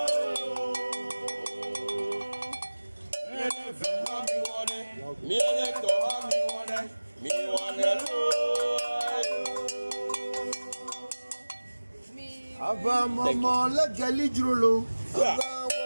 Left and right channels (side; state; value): both; inverted; correlation -1.00